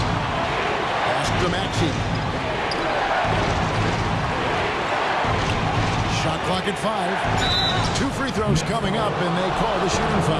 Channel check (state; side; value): identical; both; correlation 1.00